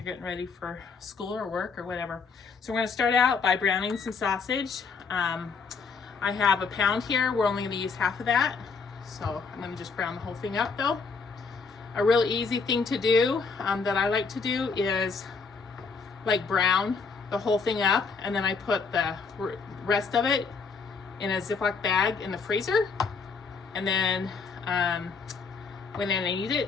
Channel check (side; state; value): right; quieter; 5.0 dB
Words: getting ready for school or work or whatever. So we're going to start out by browning some sausage. I have a pound here. We're only going to use half of that. So I'm going to just brown the whole thing up though. A really easy thing to do that I like to do is brown the whole thing up, and then I put the rest of it in a Ziploc bag in the freezer, and then when I need